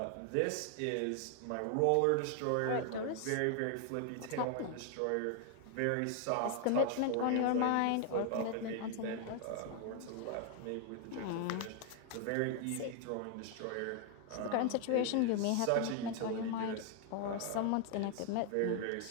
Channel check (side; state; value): both; different; correlation 0.00